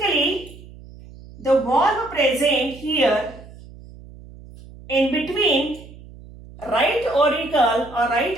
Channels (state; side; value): noise; right; hum, 19 dB below the sound